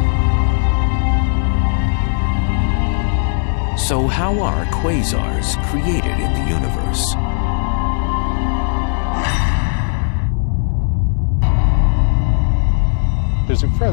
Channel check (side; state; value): right; silent; digital silence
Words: So how are quasars created in the universe? There's a